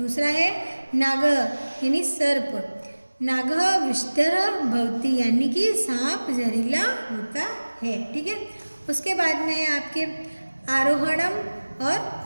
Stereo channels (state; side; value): inverted; both; correlation -1.00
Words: है नागः यानी सर्प, नागः विषधरः भवति, यानी कि सांप जहरीला होता है। ठीक है, उसके बाद में है आपके आरोहणम और